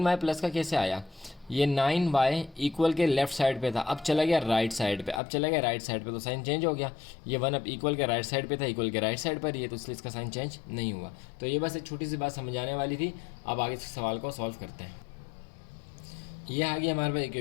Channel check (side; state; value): right; drops out; at 5.2 s